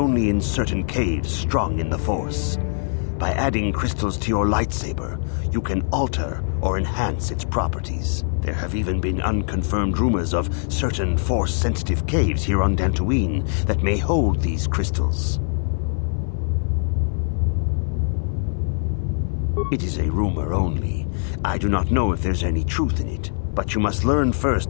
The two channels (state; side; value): silent; right; 59 dB below the other